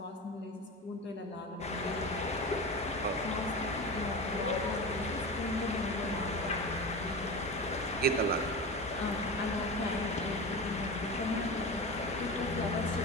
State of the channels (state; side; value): normal; both; correlation 0.27